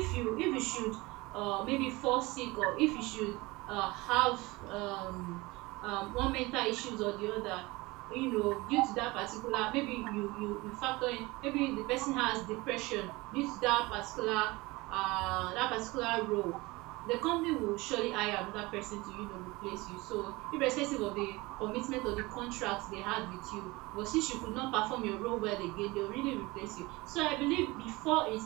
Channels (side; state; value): left; quieter; 22.3 dB